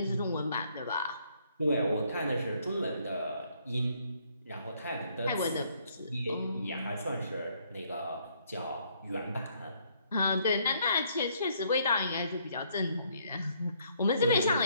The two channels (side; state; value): both; inverted; correlation -0.68